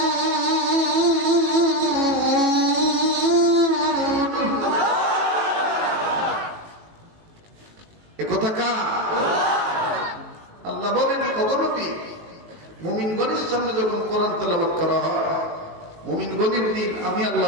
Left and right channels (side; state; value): left; late; 18 ms